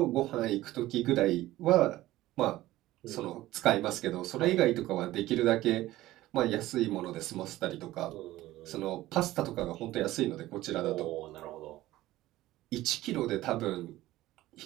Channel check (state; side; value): quieter; left; 16.2 dB